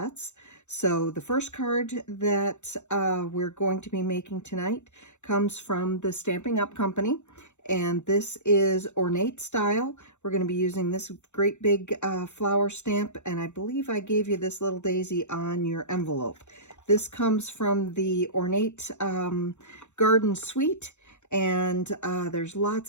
So the first card that we're going to be making tonight comes from the Stampin' Up! Company. And this is ornate style. We're going to be using this great big flower stamp, and I believe I gave you this little daisy on your envelope. This comes from the Ornate Garden Suite, and there's lots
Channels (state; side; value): late; right; 0.83 ms